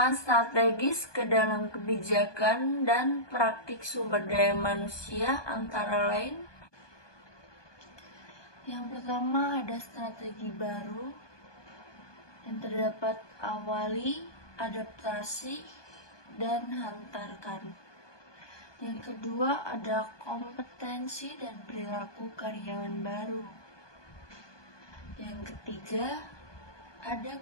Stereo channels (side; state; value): right; late; 1.2 ms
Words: strategis ke dalam kebijakan dan praktik sumber daya manusia antara lain. Yang pertama ada strategi baru yang terdapat awali, adaptasi, dan hantarkan. Yang kedua ada kompetensi dan perilaku karyawan baru. Yang ketiga ada